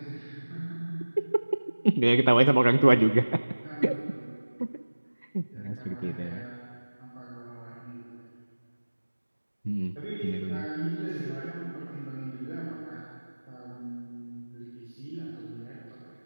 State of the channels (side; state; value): both; inverted; correlation -1.00